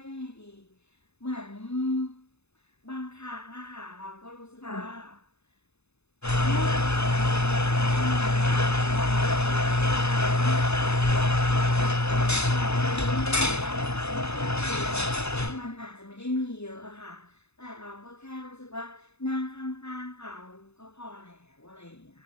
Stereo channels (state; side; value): late; right; 0.80 ms